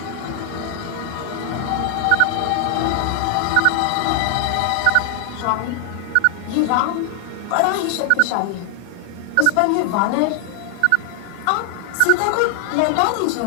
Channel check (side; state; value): both; different; correlation 0.00